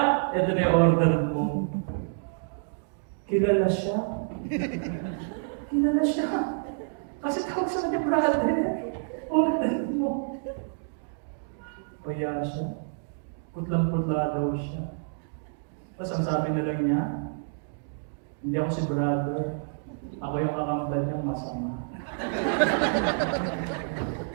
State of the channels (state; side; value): silent; left; digital silence